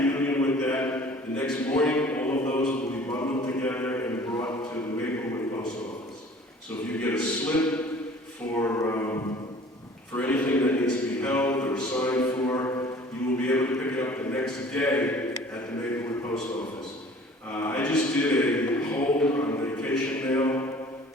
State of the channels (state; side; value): normal; both; correlation 0.49